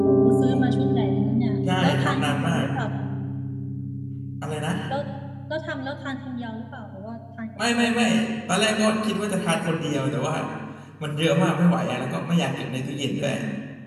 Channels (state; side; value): identical; both; correlation 1.00